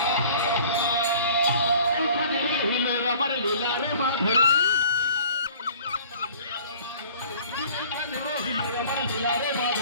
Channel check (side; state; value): both; inverted; correlation -0.50